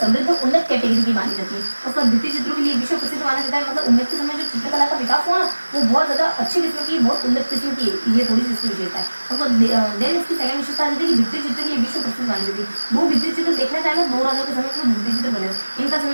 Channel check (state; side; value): inverted; both; correlation -1.00